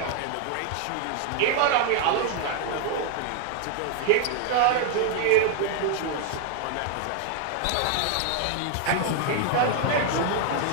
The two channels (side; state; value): both; different; correlation 0.00